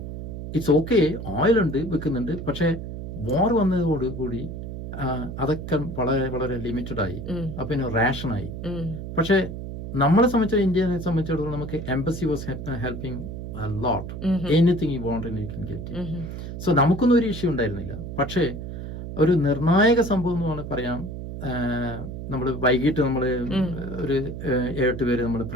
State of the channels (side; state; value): right; noise; hum, 8 dB below the sound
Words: ഇറ്റ്സ് ഓക്കെ, ഓയിൽ ഉണ്ട്, വെക്കുന്നുണ്ട്. പക്ഷെ വാർ വന്നതോടുകൂടി അതൊക്കെ വളരെ വളരെ ലിമിറ്റഡ് ആയി. അപ്പൊ പിന്നെ റേഷനായി. പക്ഷെ നമ്മളെ സംബന്ധിച്ച ഇന്ത്യയെ സംബന്ധിച്ചിടത്തോളം നമുക്ക് embassy was helping a lot. Anything you want and you can get it. So നമുക്കൊന്നും ഒരു ഇഷ്യൂ ഉണ്ടായിരുന്നില്ല. പക്ഷേ ഒരു നിർണായക സംഭവം എന്ന് പറയാം, നമ്മൾ വൈകിട്ട് നമ്മൾ ഒരു 7 പേര് നമ്മുടെ